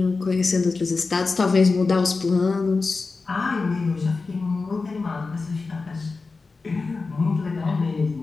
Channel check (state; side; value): quieter; right; 4.1 dB